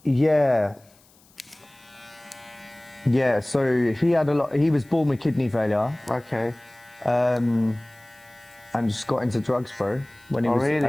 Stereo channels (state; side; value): noise; left; hiss, 30 dB below the sound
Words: Yeah, so he was born with kidney failure. Okay. And just got into drugs, bro. When he was,